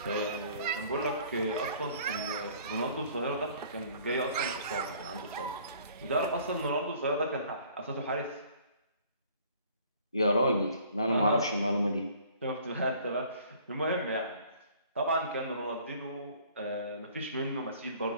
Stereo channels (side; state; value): both; inverted; correlation -0.54